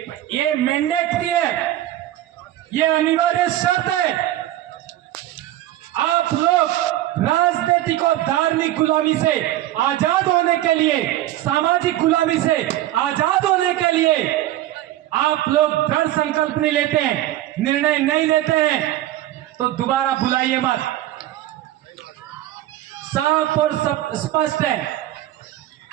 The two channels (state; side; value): quieter; left; 14.1 dB